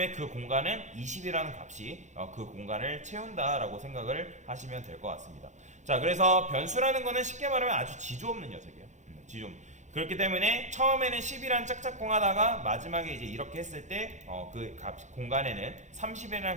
그 공간은 20이라는 값이 그 공간을 채운다 라고 생각을 하시면 될 것 같습니다. 자, 그래서 변수라는 거는 쉽게 말하면 아주 지조 없는 녀석이에요. 지조 없는. 그렇기 때문에 처음에는 10이란 짝짝꿍 하다가 마지막에 이제 이렇게 했을 때 그 공간에는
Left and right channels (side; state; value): left; late; 0.35 ms